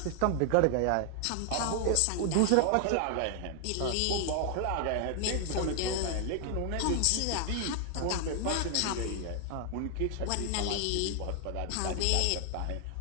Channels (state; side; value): different; both; correlation 0.00